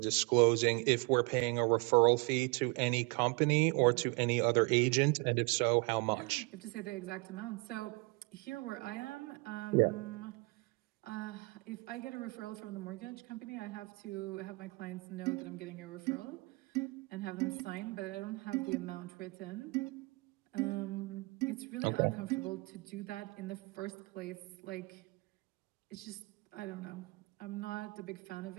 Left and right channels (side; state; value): left; quieter; 27.2 dB